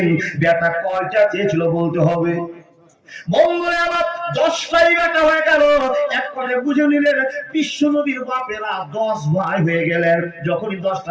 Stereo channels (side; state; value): both; identical; correlation 1.00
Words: বেটা কয়টা চেয়েছিল বলতে হবে? মঙ্গলে আবার 10টাই বেটা হয়ে গেল। এক করে বুঝে নিলেন বিশ্ব নবীর বাপেরা 10 ভাই হয়ে গেলেন। যখনই